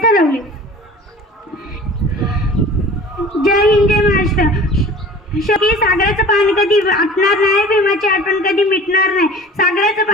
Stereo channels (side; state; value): both; normal; correlation 0.43